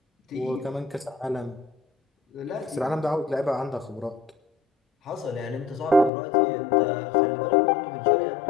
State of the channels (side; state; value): right; drops out; at 6.1 s